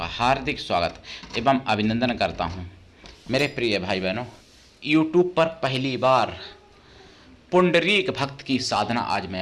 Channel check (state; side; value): identical; both; correlation 1.00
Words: हार्दिक स्वागत एवं अभिनंदन करता हूं। मेरे प्रिय भाई बहनों, YouTube पर पहली बार पुंडरीक भक्त की साधना आज मैं